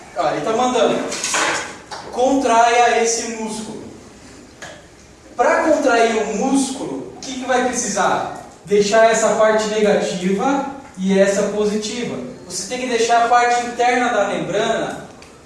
Olha, ele está mandando. Contraia esse músculo. Para contrair o músculo, o que vai precisar? Deixar essa parte negativa e essa positiva. Você tem que deixar a parte interna da membrana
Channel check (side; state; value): both; identical; correlation 1.00